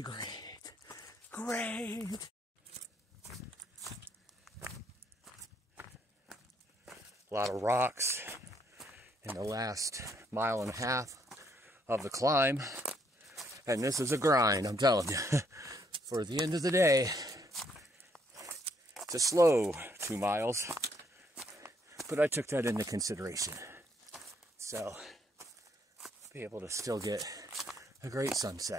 great, great. A lot of rocks in the last 1.5 miles of the climb, and this is a grind, I'm telling you. For the end of the day, it's a slow 2 miles, but I took that into consideration. So, be able to still get a great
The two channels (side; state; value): both; normal; correlation 0.71